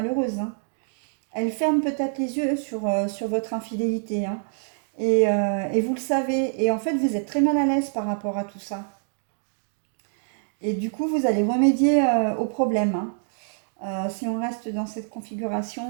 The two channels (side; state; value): left; silent; digital silence